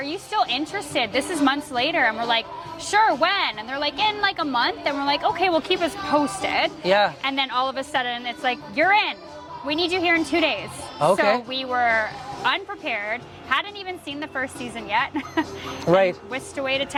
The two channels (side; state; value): both; identical; correlation 1.00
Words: you still interested? This is months later. And we're like, sure, when? And they're like, in like a month. And we're like, okay, well, keep us posted. Yeah. And then all of a sudden, it's like, you're in. We need you here in 2 days. Okay. So we were unprepared, hadn't even seen the first season yet. Right. Whisked away to